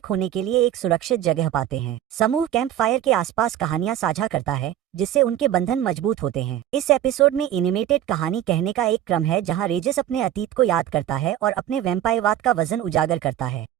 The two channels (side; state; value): left; quieter; 11.7 dB